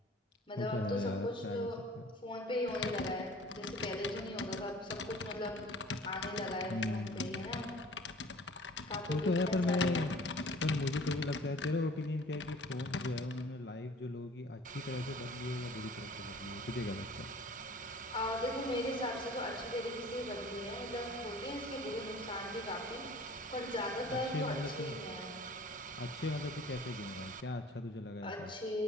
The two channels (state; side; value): normal; both; correlation 0.48